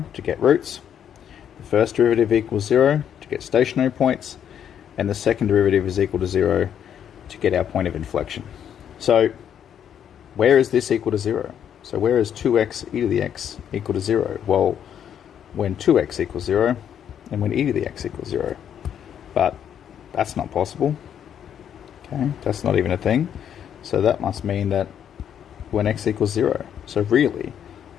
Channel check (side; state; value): right; quieter; 9.1 dB